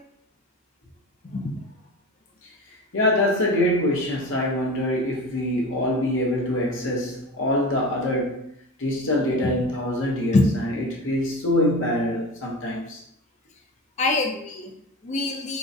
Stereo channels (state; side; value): normal; both; correlation 0.31